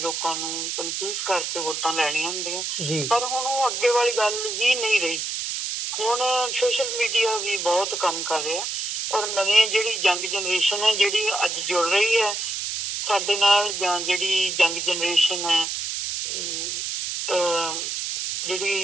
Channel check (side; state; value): right; noise; hiss, 3 dB below the sound